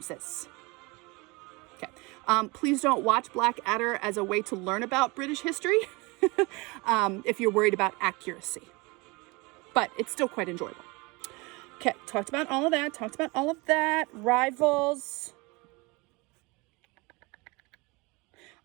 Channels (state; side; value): quieter; left; 26.0 dB